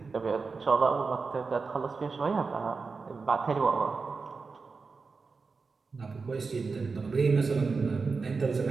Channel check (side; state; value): left; quieter; 4.5 dB